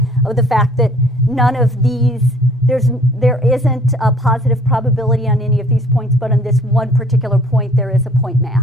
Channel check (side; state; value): both; normal; correlation 0.55